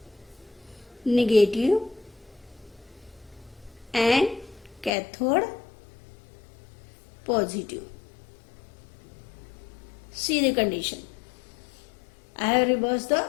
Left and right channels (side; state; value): right; drops out; at 4.9 s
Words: negative and cathode positive. See the condition. I have reversed the